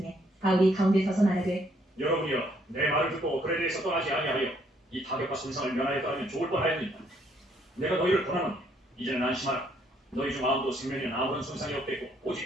바울이 가운데 서서 말하되 여러분이여 내 말을 듣고 그에 대해서 떠나지 아니하여 이 타격과 손상을 면하였다면 좋을 뻔하였느니라 내가 너희를 권하노니 이제는 안심하라 너희 중 아무도 생명에는 아무런 손상이 없겠고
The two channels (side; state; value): both; normal; correlation 0.68